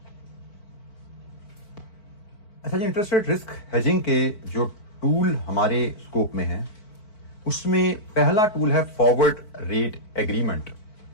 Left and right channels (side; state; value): right; late; 4.5 ms